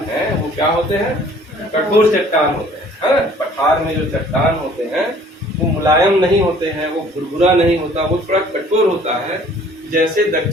हैं वो क्या होते हैं, कठोर चट्टान होते हैं, है ना। पठार में जो चट्टान होते हैं वो मुलायम नहीं होते हैं, वो भुरभुरा नहीं होता, वो थोड़ा कठोर होता है, जैसे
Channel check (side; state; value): both; normal; correlation 0.54